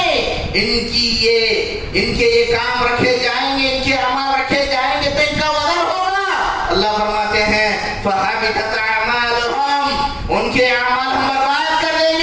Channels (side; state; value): both; identical; correlation 1.00